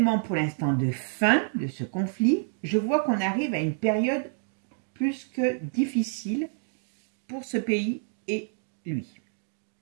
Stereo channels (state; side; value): silent; left; digital silence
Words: pour l'instant de fin de ce conflit. Je vois qu'on arrive à une période plus que difficile pour ce pays et lui.